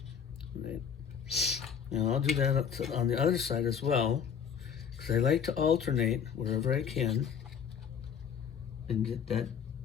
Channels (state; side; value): quieter; right; 7.5 dB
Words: Right. Now I'll do that on the other side as well, because I like to alternate wherever I can and get that